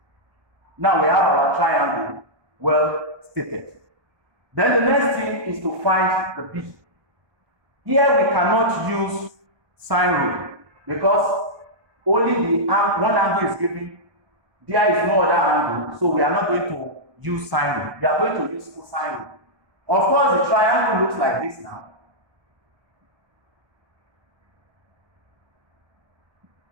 Now we have our triangle well stated. Then the next thing is to find the B. Here we cannot use sine rule because only the one angle is given. There is no other angle, so we are not going to use sine rule. We are going to use cosine rule. Of course, the triangle looks like this now.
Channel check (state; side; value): late; left; 1.2 ms